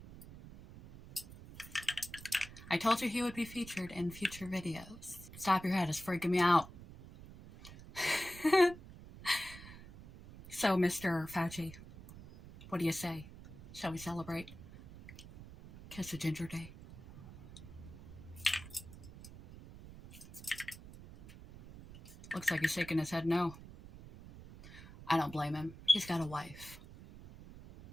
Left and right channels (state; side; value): noise; right; rumble, 16 dB below the sound